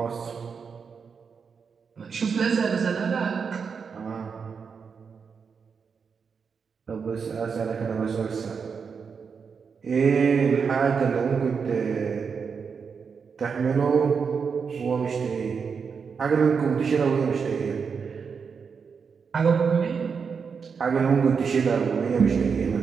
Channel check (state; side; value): quieter; left; 5.9 dB